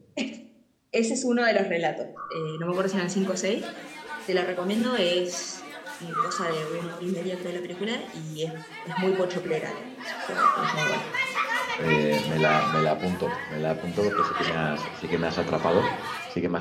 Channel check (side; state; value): both; identical; correlation 1.00